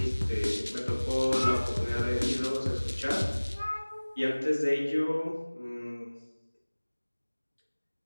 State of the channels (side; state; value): both; inverted; correlation -1.00